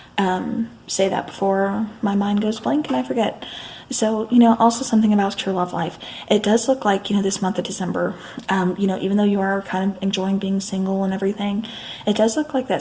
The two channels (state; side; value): identical; both; correlation 1.00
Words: say that before my mind goes blank and I forget. So, also something about your love life. It does look like, this month of December, even though you are kind of enjoying being single and everything, it does look like that